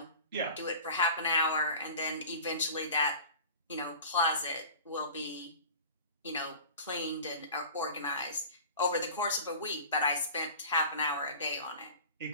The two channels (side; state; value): both; inverted; correlation -0.39